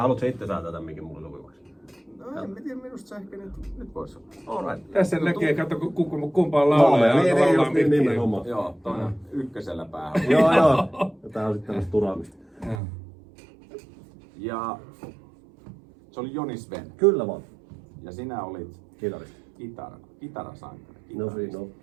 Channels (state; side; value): drops out; left; at 12.8 s